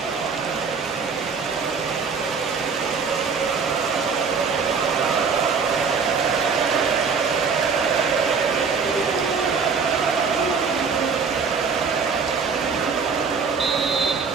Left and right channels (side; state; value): left; quieter; 5.5 dB